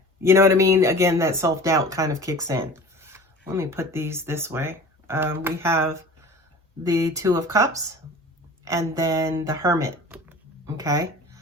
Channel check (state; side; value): normal; both; correlation 0.40